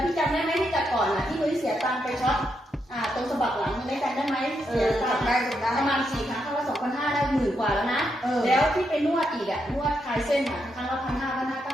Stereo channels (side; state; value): both; normal; correlation 0.81